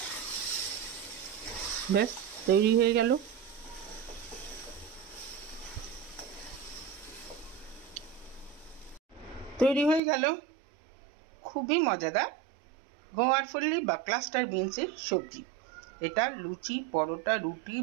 ব্যাস তৈরি হয়ে গেল। তৈরি হয়ে গেল খুবই মজাদার গোয়ার ফল্লি বা ক্লাস্টার বিনসের সবজি। এটা লুচি, পরোটা, রুটি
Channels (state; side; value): drops out; left; at 10.0 s